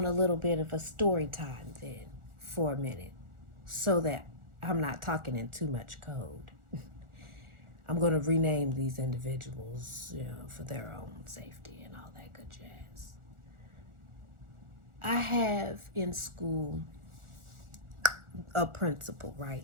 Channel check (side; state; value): left; late; 1.4 ms